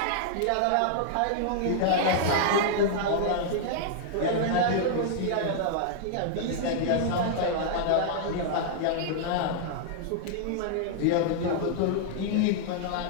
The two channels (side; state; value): both; different; correlation -0.01